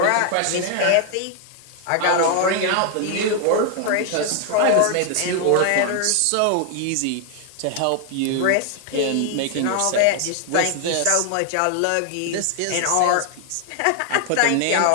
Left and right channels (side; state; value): both; different; correlation 0.00